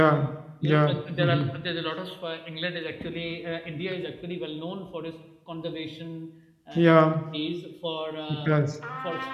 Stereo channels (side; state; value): both; identical; correlation 1.00